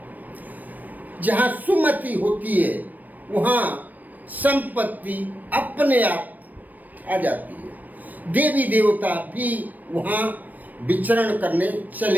जहां सुमति होती है वहां संपत्ति अपने आप आ जाती है। देवी देवता भी वहां विचरण करने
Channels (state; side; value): late; left; 0.084 ms